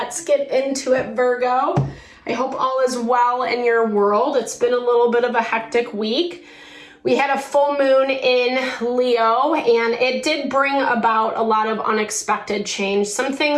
get into it, Virgo. I hope all is well in your world. It's been a little bit of a hectic week. We had a full moon in Leo, and it did bring about a lot of unexpected change. Some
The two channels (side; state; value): both; identical; correlation 1.00